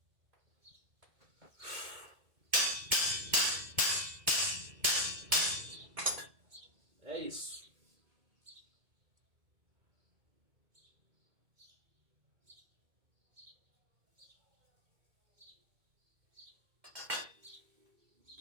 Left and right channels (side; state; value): left; late; 2.1 ms